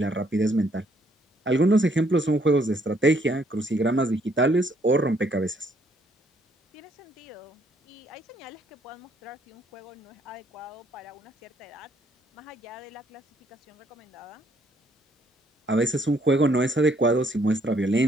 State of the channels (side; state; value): both; normal; correlation 0.68